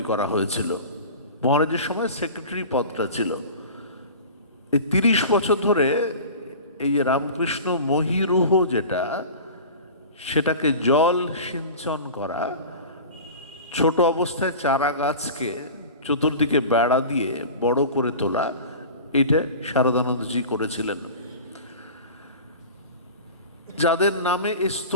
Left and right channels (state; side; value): inverted; both; correlation -0.36